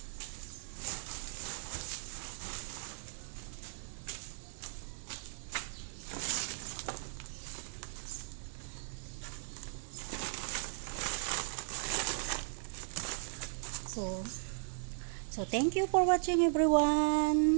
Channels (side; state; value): left; silent; digital silence